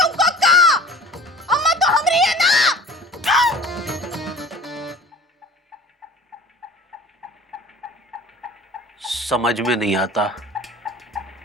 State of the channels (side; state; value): both; normal; correlation 0.42